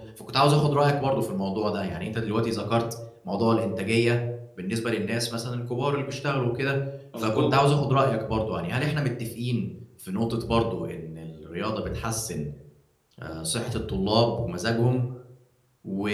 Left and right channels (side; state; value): both; identical; correlation 1.00